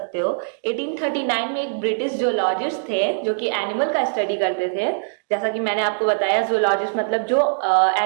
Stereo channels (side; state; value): left; silent; digital silence